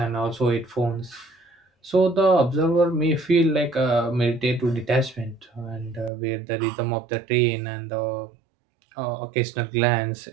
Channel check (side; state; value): left; drops out; at 6.1 s